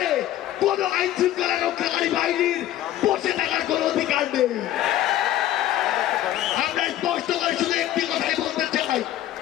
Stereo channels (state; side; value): quieter; right; 13.1 dB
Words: কোন আইন শৃঙ্খলা রক্ষাকারী বাহিনীর বসে থাকার কোন অধিকার নেই। আমরা স্পষ্ট করে শুধু একটি কথাই বলতে চাই,